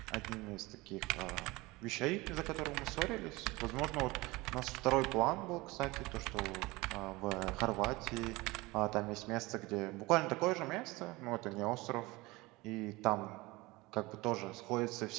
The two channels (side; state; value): left; quieter; 22.0 dB